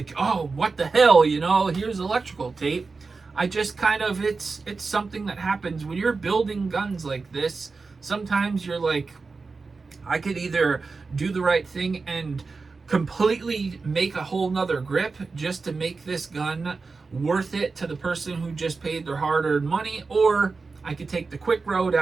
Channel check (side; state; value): left; quieter; 4.3 dB